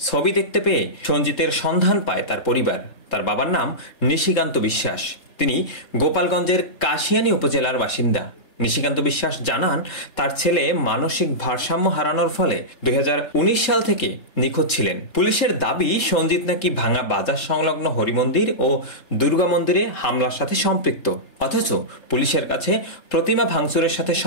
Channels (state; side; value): late; right; 3.7 ms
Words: দেখতে পেয়ে সঞ্জিতের সন্ধান পায় তার পরিবার। তার বাবার নাম নিশিকান্ত বিশ্বাস। তিনি গোপালগঞ্জের কাশিয়ানী উপজেলার বাসিন্দা। নিশিকান্ত বিশ্বাস জানান, তার ছেলে মানসিক ভারসাম্য হারানোর ফলে 2019 সাল থেকে নিখোঁজ ছিলেন। পুলিশের দাবি, সঞ্জিত নাকি ভাঙা বাজার সংলগ্ন হরিমন্দির ও দুর্গা মন্দিরে হামলার সাথে সম্পৃক্ত। অথচ পুলিশের কাছে প্রতিমা ভাঙচুরের সাথে